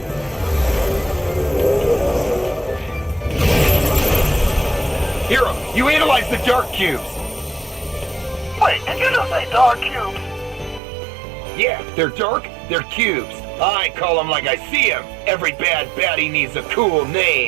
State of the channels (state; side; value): drops out; left; at 10.8 s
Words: Hero, you analyzed the dark cubes. Wait, did you just say dark cubes? Yeah, they're dark, they're cubes. I call them like I see them. Every bad baddie needs a cool